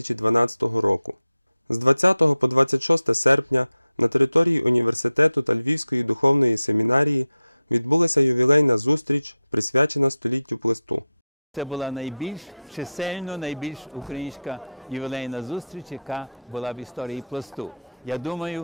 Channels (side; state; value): both; inverted; correlation -0.89